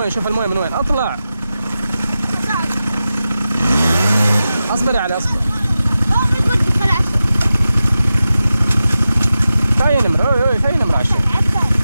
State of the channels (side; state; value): both; inverted; correlation -0.93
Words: وين. اطلع. اصبر يا علي اصبر. في نمرة 20.